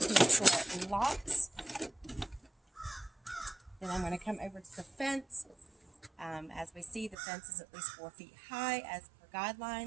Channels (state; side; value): drops out; left; at 7.2 s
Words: make sure it locks. Then I'm going to come over to the fence. As we see, the fence is at least 4 feet high as per